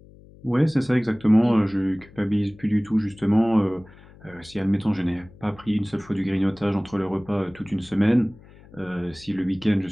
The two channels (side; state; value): left; noise; hum, 23 dB below the sound